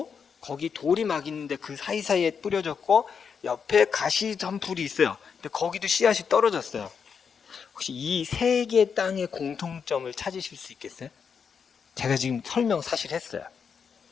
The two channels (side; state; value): right; quieter; 6.5 dB